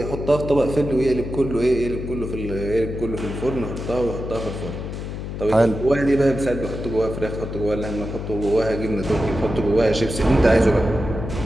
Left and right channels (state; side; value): noise; left; hum, 7 dB below the sound